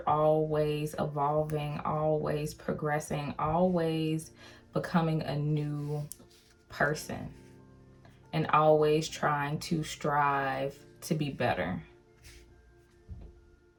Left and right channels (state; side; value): identical; both; correlation 1.00